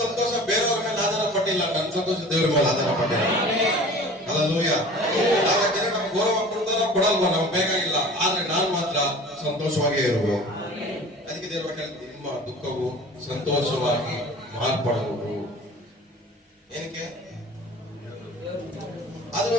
ಸಂತೋಷ ಬೇರೆಯವ್ರ ಮೇಲೆ ಆಧಾರ ಪಟ್ಟ ಪಟ್ಟಿಲ್ಲ, ನನ್ನ ಸಂತೋಷ ದೇವರ ಮೇಲೆ ಆಧಾರ ಪಟ್ಟಿಲ್ಲ. ಹಲ್ಲೆಲೂಯಾ. ಜನ ನಮ್ಗೆ ಗೌರವ ಕೊಡ್ತಾರೋ ಕೊಡಲ್ವೋ ನಮ್ಗೆ ಬೇಕಾಗಿಲ್ಲ, ಆದ್ರೆ ನಾನ್ ಮಾತ್ರ ಸಂತೋಷವಾಗೇ ಇರಬೇಕು. ಅದಕ್ಕೆ ದೇವರು ನಿಮ್ಮ ದುಃಖವು ಸಂತೋಷವಾಗಿ ಮಾರ್ಪಡುವುದು. ಏನಕ್ಕೆ? ಅದು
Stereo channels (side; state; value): both; normal; correlation 0.42